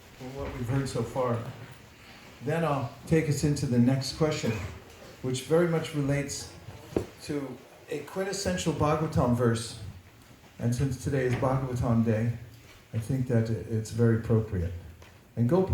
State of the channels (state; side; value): identical; both; correlation 1.00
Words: from what we've heard so far. Then I'll take us into the next question, which very much relates to a quintessential Bhagavatam verse. And since today is Bhagavatam Day, I think that it's very appropriate. And